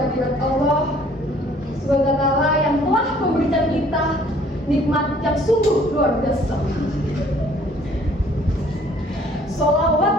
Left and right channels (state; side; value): normal; both; correlation 0.57